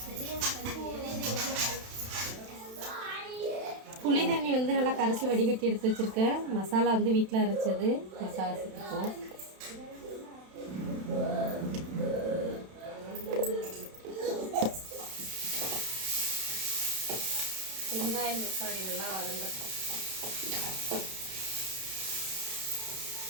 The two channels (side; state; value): left; late; 31 ms